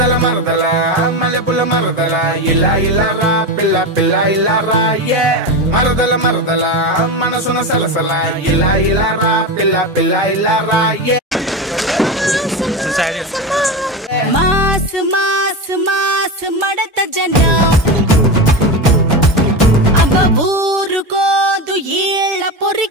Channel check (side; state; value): both; normal; correlation 0.19